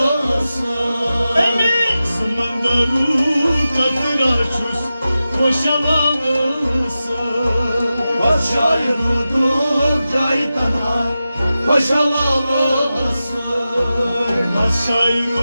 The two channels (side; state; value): both; inverted; correlation -0.93